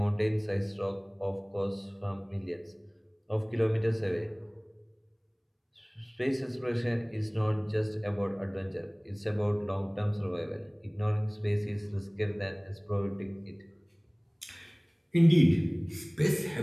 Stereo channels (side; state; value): both; identical; correlation 1.00